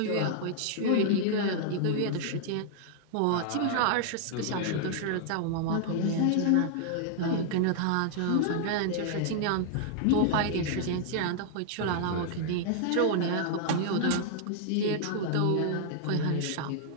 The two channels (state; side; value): different; both; correlation -0.01